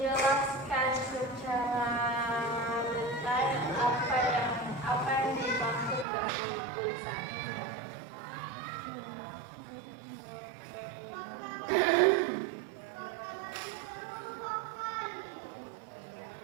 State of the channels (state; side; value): drops out; left; at 6.1 s